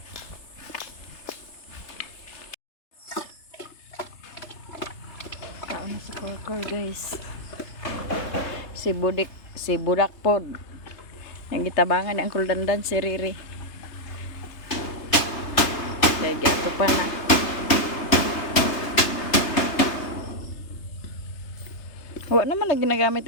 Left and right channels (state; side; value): late; right; 3.3 ms